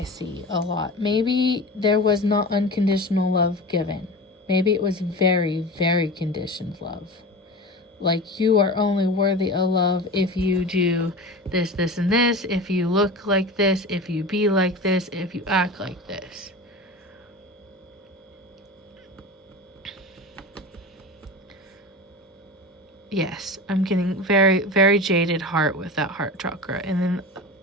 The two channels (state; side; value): normal; both; correlation 0.31